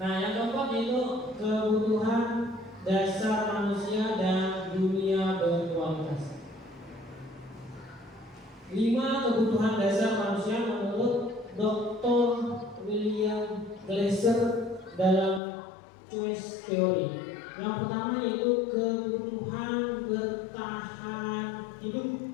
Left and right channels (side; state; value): right; drops out; at 15.4 s